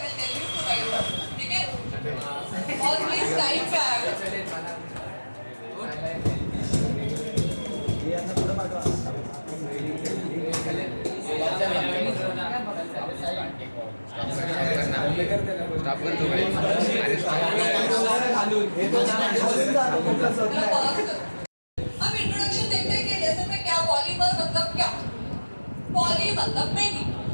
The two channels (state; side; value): inverted; both; correlation -1.00